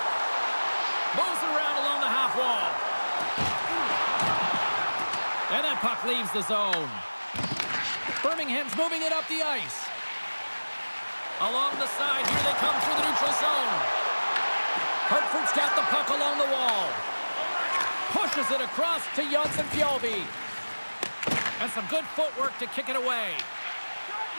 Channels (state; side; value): inverted; both; correlation -1.00